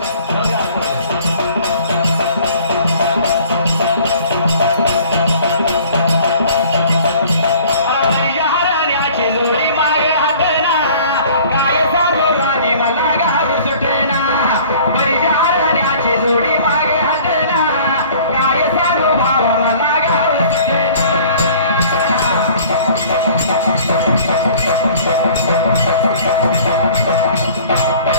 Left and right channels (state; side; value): inverted; both; correlation -0.50